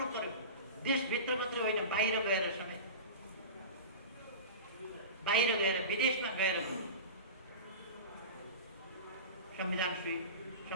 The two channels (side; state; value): both; inverted; correlation -0.30